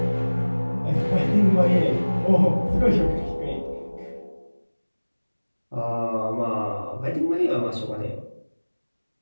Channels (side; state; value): both; inverted; correlation -1.00